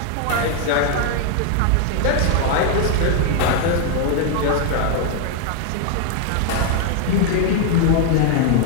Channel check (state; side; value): different; both; correlation 0.00